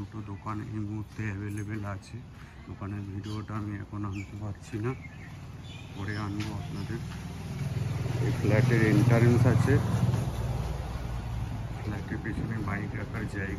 দোকান এই মুহূর্তে অ্যাভেলেবেল আছে। দোকানের ভিডিওটা আমি এখন আনতে পারছি না, পরে আনবো আপনাদের। এই ফ্ল্যাটের এন্ট্রান্স আছে, ফ্ল্যাটের পেছনে বাইক রাখার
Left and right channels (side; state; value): both; identical; correlation 1.00